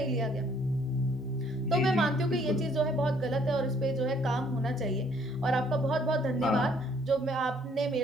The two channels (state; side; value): normal; both; correlation 0.63